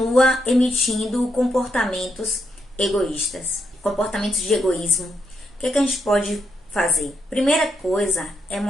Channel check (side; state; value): both; normal; correlation 0.79